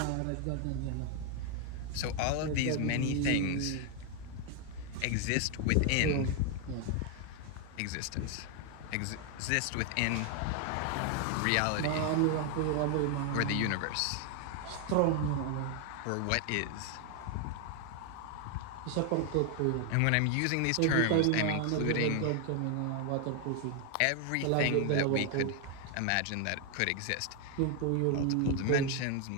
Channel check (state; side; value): different; both; correlation 0.00